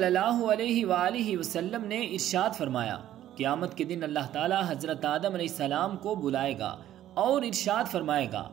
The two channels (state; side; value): quieter; left; 12.5 dB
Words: اللہ علیہ وآلہ وسلم نے ارشاد فرمایا، قیامت کے دن اللہ تعالی حضرت آدم علیہ السلام کو بلائے گا اور ارشاد فرمائے گا،